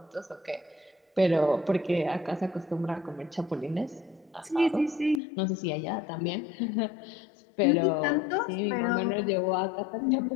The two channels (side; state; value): right; drops out; at 5.2 s